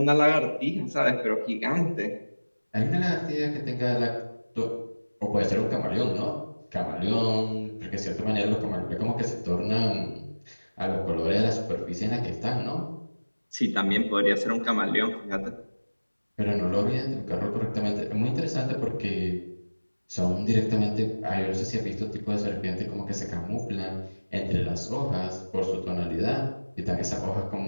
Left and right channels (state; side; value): inverted; both; correlation -1.00